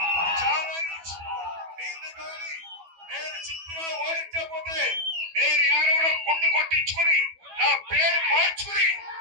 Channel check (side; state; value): left; late; 12 ms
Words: నేను చిత్తుగా ఓడించకపోతే నేను యాదవ్లో గుండు కొట్టించుకుని నా పేరు మార్చుకుని